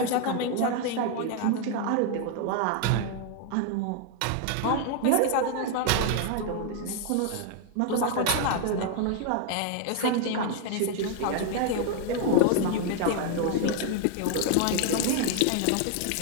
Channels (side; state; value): both; different; correlation 0.00